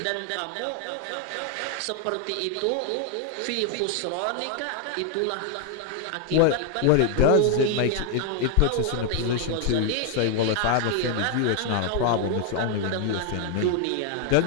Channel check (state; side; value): different; both; correlation 0.00